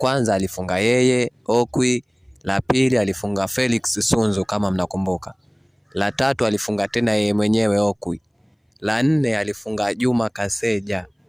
alifunga yeye Okwi, la pili alifunga Felix Sunzu kama mnakumbuka, la tatu alifunga tena yeye mwenyewe Okwi, la 4 alifunga Juma Kaseja,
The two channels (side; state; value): both; identical; correlation 1.00